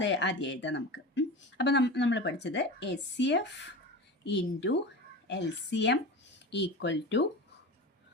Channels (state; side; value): normal; both; correlation 0.30